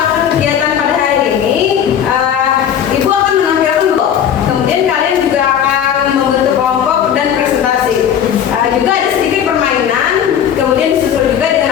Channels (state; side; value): quieter; right; 9.0 dB